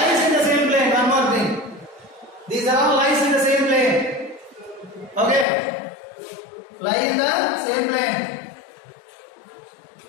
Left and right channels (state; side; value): drops out; right; at 5.5 s